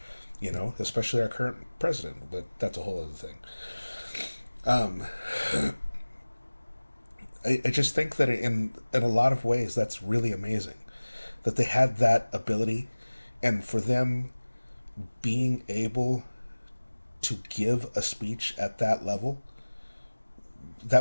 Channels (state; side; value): inverted; both; correlation -1.00